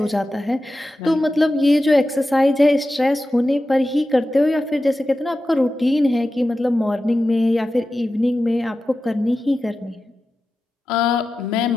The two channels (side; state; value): both; normal; correlation 0.93